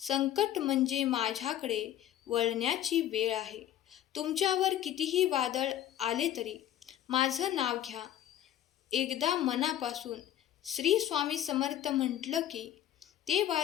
म्हणजे माझ्याकडे वळण्याची वेळ आहे. तुमच्यावर कितीही वादळ आले तरी माझं नाव घ्या. एकदा मनापासून श्री स्वामी समर्थ म्हटलं की ते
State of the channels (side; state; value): right; quieter; 11.8 dB